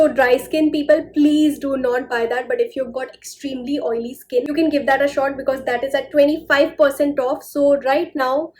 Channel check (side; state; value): both; identical; correlation 1.00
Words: dry skin people, please do not buy that, but if you've got extremely oily skin, you can give that a shot because that is at 25% off. So right now